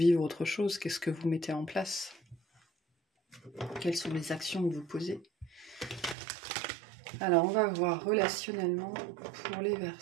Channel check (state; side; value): drops out; left; at 6.2 s